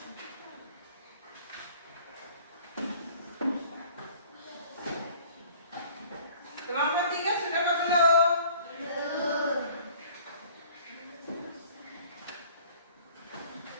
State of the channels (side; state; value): both; inverted; correlation -0.52